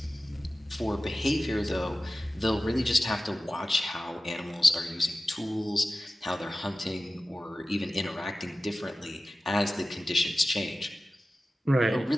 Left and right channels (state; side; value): normal; both; correlation 0.95